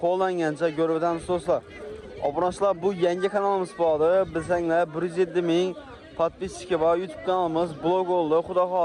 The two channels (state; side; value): identical; both; correlation 1.00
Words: qo'llangancha ko'rib o'tamiz do'stlar. Obunachilar, bu yangi kanalimiz bo'ldi. Bizlar 107 ming podpischiki bor YouTube kanalimiz blog oldu. Xudo